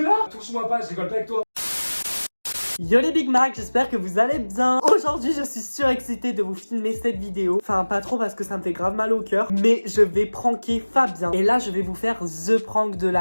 Touche-moi pas, je rigole pas avec toi. Yo les Big Mac, j'espère que vous allez bien. Aujourd'hui je suis surexcitée de vous filmer cette vidéo. Enfin pas trop parce que ça me fait grave mal au cœur, mais je vais pranker Fabien. Et là je vais vous faire the prank de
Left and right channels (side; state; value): both; inverted; correlation -1.00